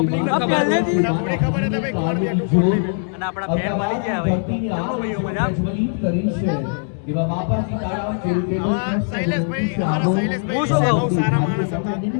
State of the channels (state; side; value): silent; right; 65 dB below the other